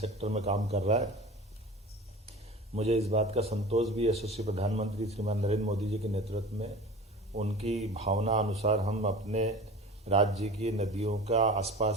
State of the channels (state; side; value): normal; both; correlation 0.37